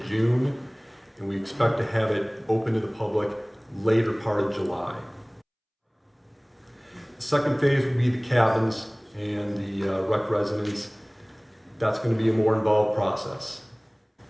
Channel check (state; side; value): identical; both; correlation 1.00